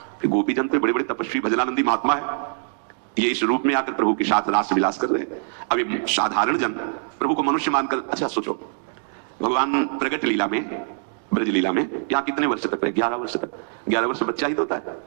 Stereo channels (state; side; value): silent; left; digital silence